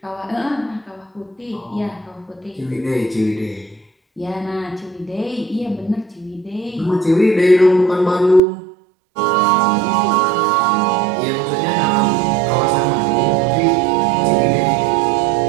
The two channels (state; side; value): drops out; left; at 8.4 s